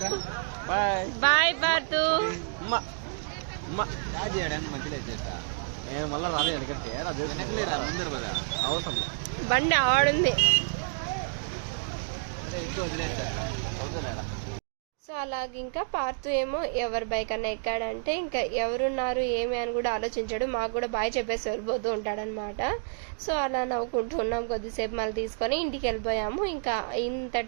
బాయ్ పార్తు. నేను మళ్ళీ రాలేదు ఎందుకంటే వెనకలేరా ముందరు కదా అవసరం బండి ఆడుంది. ఎక్కువ వదిలేస్తా. సో అలాగే ఇంకా పార్తు ఏమో ఎవరి బైక్ అన్న ఎక్కాడంటే ఇంకా ఎవరున్నారు ఏమి అని కూడా ఆలోచించాడు. మాకు కూడా బాయ్ చెప్పేసి వెళ్ళిపోతూ ఉంటాడనమాట. సో అలా నవ్వుకుంటూ ఉన్నాం కొద్దిసేపు, మళ్ళీ తీసుకొని ఇంటికి వెళ్ళిపోయాము. ఇంకా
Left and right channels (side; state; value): left; silent; digital silence